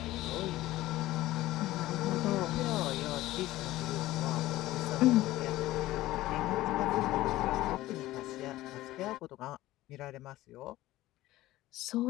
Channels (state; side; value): quieter; right; 16.4 dB